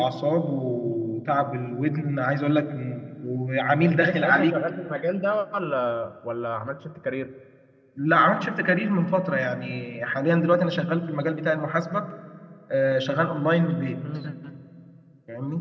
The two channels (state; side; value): identical; both; correlation 1.00